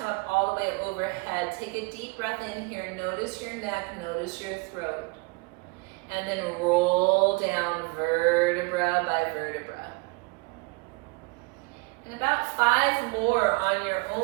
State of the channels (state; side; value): quieter; left; 28.3 dB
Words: up all the way overhead. Take a deep breath in here. Notice your neck, notice your throat. And then roll down vertebra by vertebra. And about 5 more on your